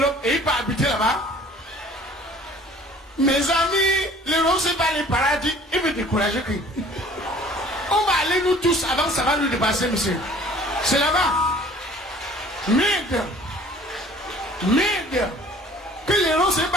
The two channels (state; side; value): normal; both; correlation 0.51